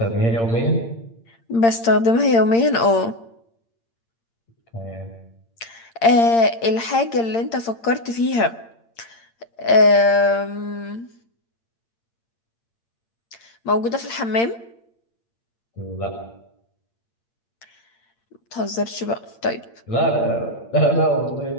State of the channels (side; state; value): right; late; 8.7 ms